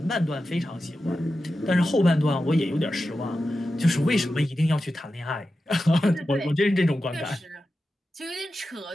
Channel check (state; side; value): normal; both; correlation 0.92